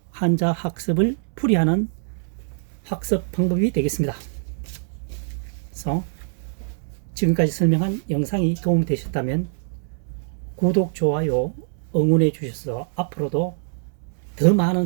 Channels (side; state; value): left; silent; 63 dB below the other